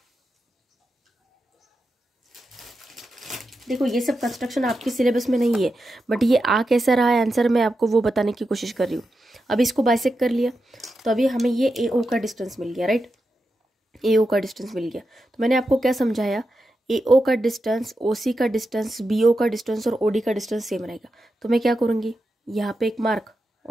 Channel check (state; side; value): normal; both; correlation 0.88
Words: देखो ये सब कंस्ट्रक्शन आपके सिलेबस में नहीं है, बट ये आ कैसा रहा है आंसर, मैं आपको वो बताने की कोशिश कर रही हूँ। अभी इसको बाइसेक्ट कर लिया तो अभी हमें ये AO का डिस्टेंस मिल गया, राइट, AO का डिस्टेंस मिल गया। तो मैंने आपको क्या समझाया, AO का डिस्टेंस, OC का डिस्टेंस, BO का डिस्टेंस और OD का डिस्टेंस सेम रहेगा। तो मैं क्या करूँगी, यहाँ पे एक मार्क